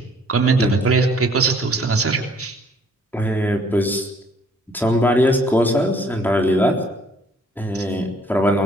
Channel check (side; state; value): both; normal; correlation 0.60